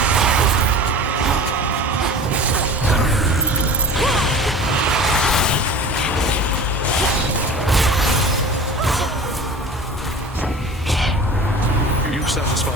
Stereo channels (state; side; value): normal; both; correlation 0.38